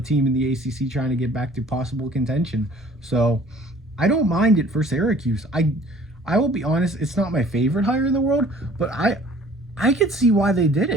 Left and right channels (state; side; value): normal; both; correlation 0.52